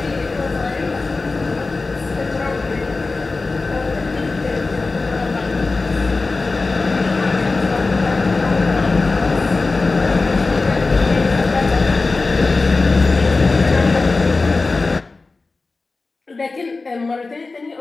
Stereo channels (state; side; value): quieter; right; 3.7 dB